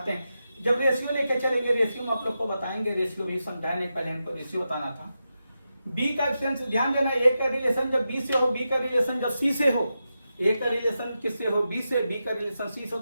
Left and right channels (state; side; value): inverted; both; correlation -0.89